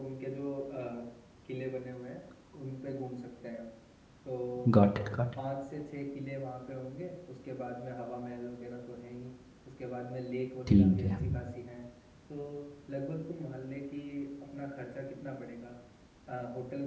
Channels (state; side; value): identical; both; correlation 1.00